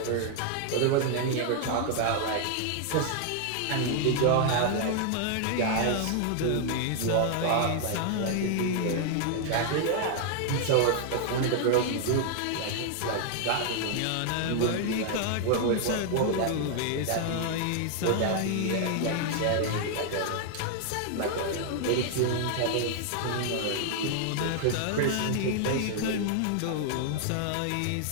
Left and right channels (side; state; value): both; different; correlation 0.00